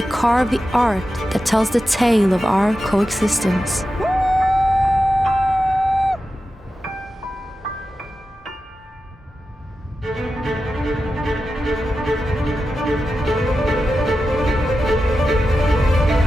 carve the art that tells the tale of our coexistence.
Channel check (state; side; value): normal; both; correlation 0.91